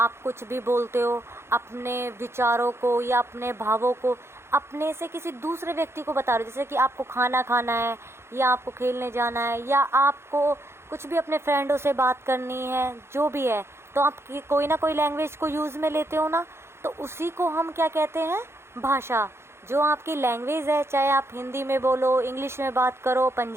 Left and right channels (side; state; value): left; late; 0.12 ms